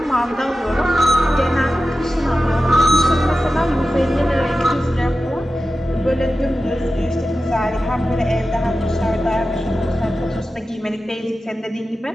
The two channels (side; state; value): both; normal; correlation 0.93